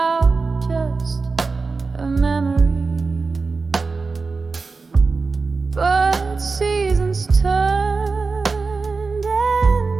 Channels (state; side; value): quieter; left; 4.2 dB